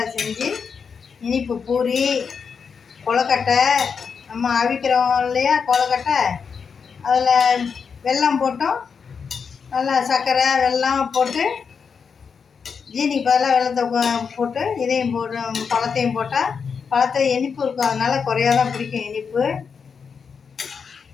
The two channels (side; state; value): right; quieter; 6.0 dB